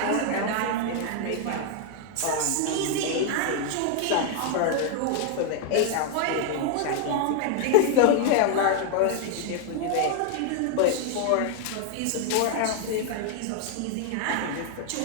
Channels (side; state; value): both; different; correlation 0.00